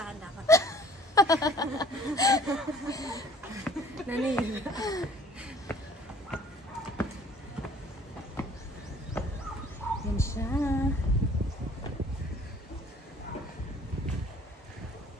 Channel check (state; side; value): normal; both; correlation 0.54